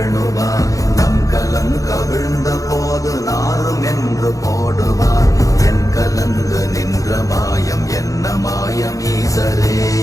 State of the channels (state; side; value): late; right; 0.16 ms